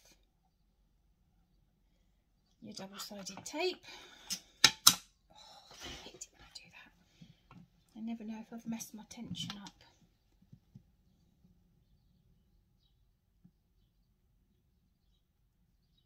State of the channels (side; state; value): both; identical; correlation 1.00